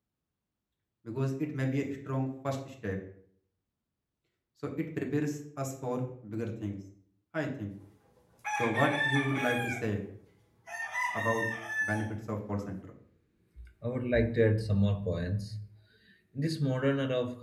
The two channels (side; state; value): both; identical; correlation 1.00